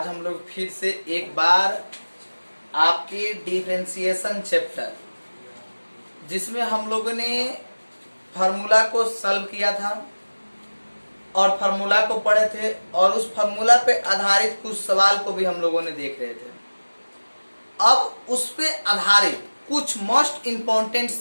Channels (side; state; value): both; inverted; correlation -1.00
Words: हम लोग फिर से एक बार आपके डिफरेंशिएशन चैप्टर, जिसमें हम लोगों ने फार्मूला को सॉल्व किया था और फार्मूला को पढ़े थे और उस फार्मूला पे आधारित कुछ सवाल को भी हम लोगों ने देख रहे थे। अब उस पे आधारित कुछ मोस्ट इम्पोर्टेंट